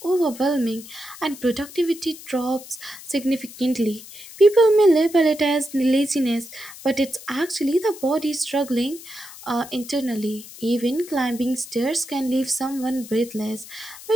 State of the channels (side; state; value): left; noise; hiss, 16 dB below the sound